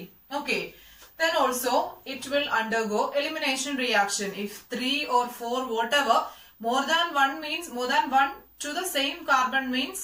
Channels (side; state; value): both; identical; correlation 1.00